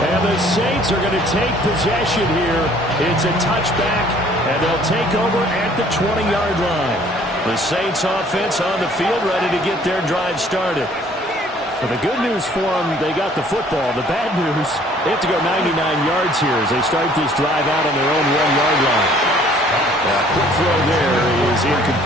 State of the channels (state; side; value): normal; both; correlation 0.57